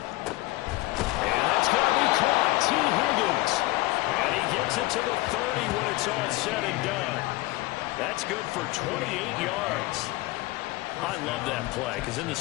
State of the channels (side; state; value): right; quieter; 19.9 dB